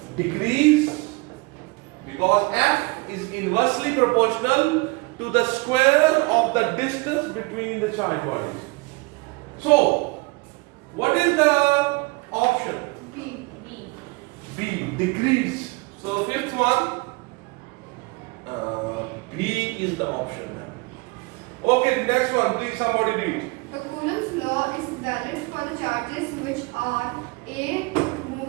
decrease because F is inversely proportional to the square of the distance between the charged bodies. So, what is the option? B. B. B, decrease. So, fifth one, B is the option. Okay, next one, please somebody read. The Coulomb's law is valid for the charges which are A.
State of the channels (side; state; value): left; quieter; 26.5 dB